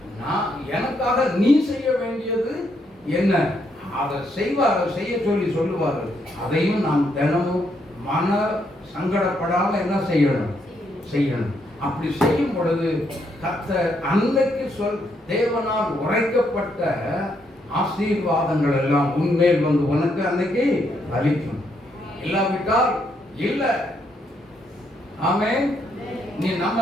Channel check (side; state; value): both; normal; correlation 0.75